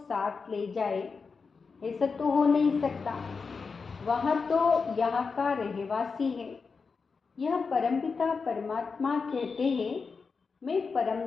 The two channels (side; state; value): right; quieter; 4.9 dB